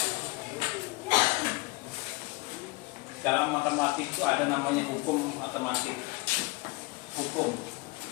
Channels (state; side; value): quieter; right; 24.7 dB